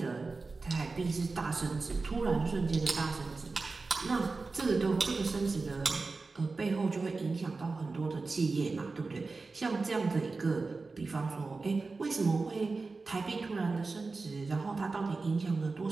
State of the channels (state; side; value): quieter; left; 3.9 dB